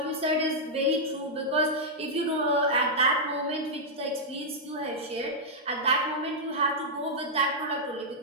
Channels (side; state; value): both; normal; correlation -0.07